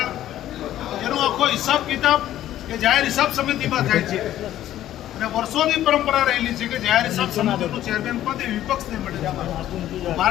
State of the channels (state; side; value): quieter; right; 12.8 dB